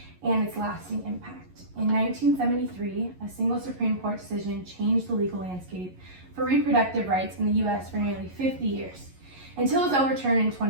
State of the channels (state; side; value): late; left; 11 ms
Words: and its lasting impact. In 1973, a single Supreme Court decision changed the legal landscape for reproductive rights in the US for nearly 50 years, until it was overturned in